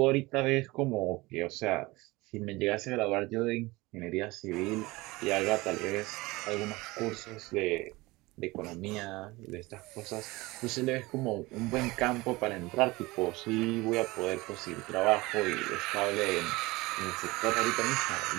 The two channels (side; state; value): left; quieter; 21.7 dB